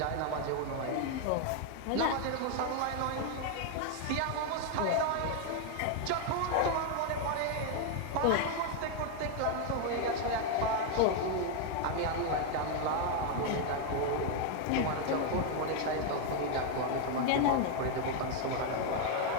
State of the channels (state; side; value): different; both; correlation 0.01